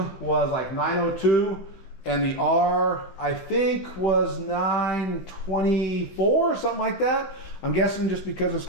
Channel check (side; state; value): right; late; 15 ms